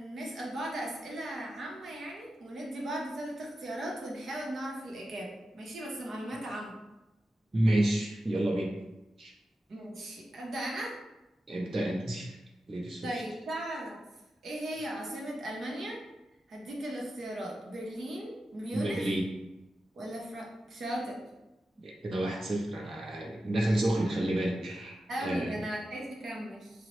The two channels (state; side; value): normal; both; correlation 0.91